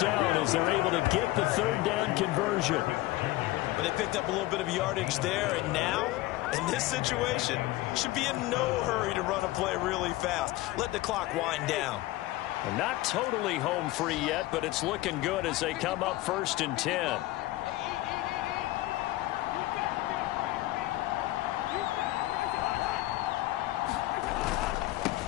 as they're able to get the 3rd down conversion. But they picked up a little bit of yardage there, and now, in this situation, should be in no hurry to run a play really fast. Let the clock wind down. Well, not totally home free yet, but it's looking good as they come up 1st and 10.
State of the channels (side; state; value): right; quieter; 17.7 dB